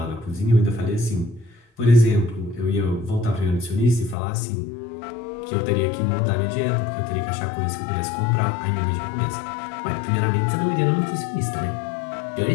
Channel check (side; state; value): right; drops out; at 4.2 s